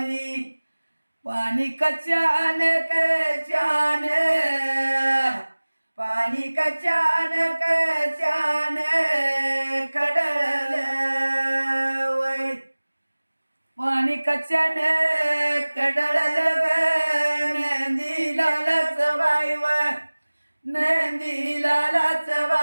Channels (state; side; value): inverted; both; correlation -1.00